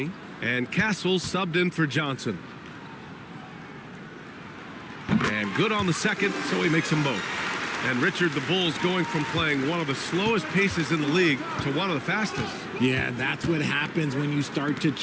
and Castle subbed in for Johnson. And good on the second, so he makes them both. And Richard, the Bulls going from playing one of the slowest paces in the league to one of the fastest. Yeah, that's what happens when you start to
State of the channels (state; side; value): identical; both; correlation 1.00